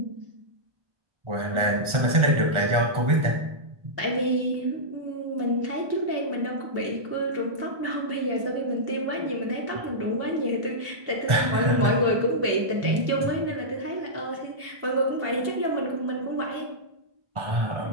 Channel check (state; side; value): late; left; 1.4 ms